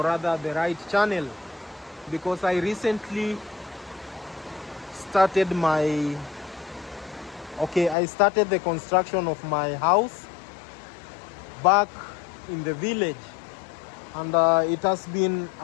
rather the right channel, because I recently started I started the construction of my house back in the village, and it has been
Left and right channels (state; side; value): drops out; right; at 8.0 s